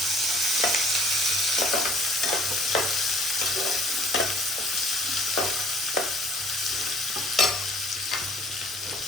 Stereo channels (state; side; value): normal; both; correlation 0.56